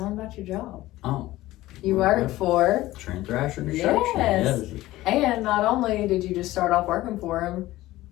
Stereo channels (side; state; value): right; quieter; 16.8 dB